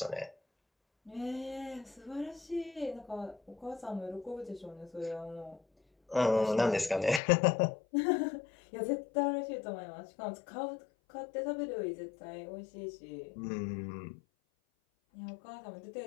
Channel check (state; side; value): drops out; right; at 7.2 s